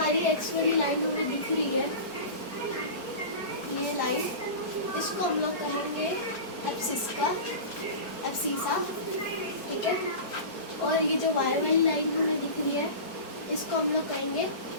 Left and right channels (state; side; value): late; right; 4.6 ms